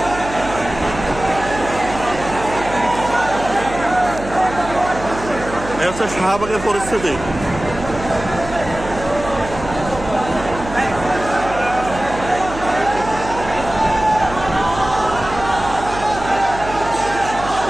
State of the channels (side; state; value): right; noise; hum, 11 dB below the sound